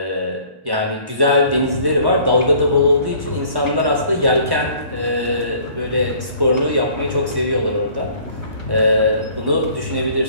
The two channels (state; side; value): late; left; 1.1 ms